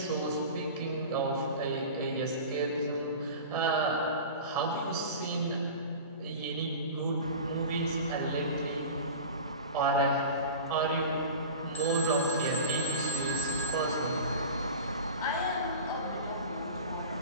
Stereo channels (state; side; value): inverted; both; correlation -0.33